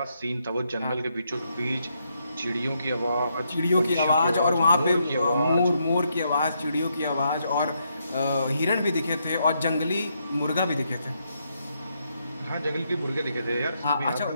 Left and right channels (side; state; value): both; inverted; correlation -0.78